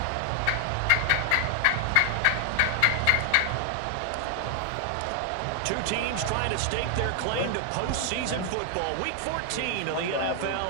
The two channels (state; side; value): different; both; correlation 0.00